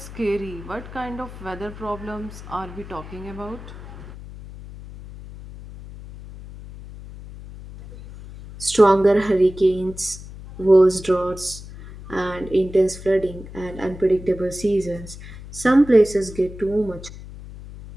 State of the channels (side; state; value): left; noise; hum, 14 dB below the sound